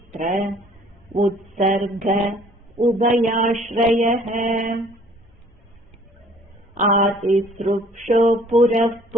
उत्सर्ग उभयाश्रयः आतिसृक्षो पुरः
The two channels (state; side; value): normal; both; correlation 0.55